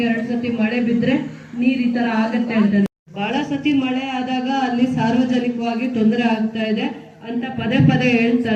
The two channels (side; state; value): both; identical; correlation 1.00